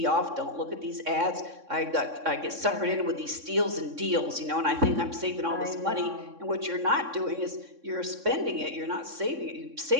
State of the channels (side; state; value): left; late; 3.6 ms